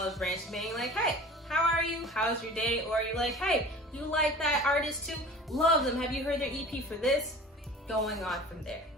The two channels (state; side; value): normal; both; correlation 0.41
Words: branch and being like, hey, how are you? How's your day? Or you're like, hey, you like that artist too? Love them. Have you heard their EP for this? Going on from there.